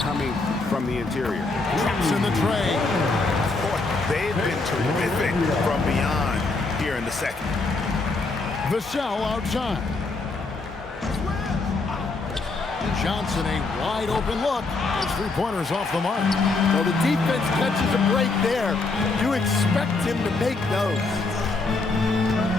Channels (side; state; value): right; quieter; 3.6 dB